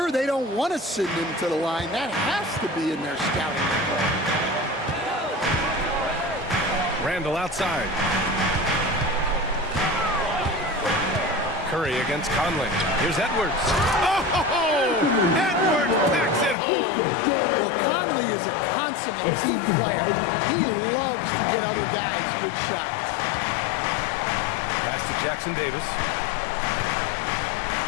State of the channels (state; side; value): drops out; right; at 16.6 s